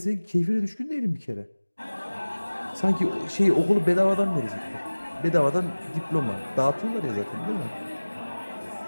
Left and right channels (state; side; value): inverted; both; correlation -1.00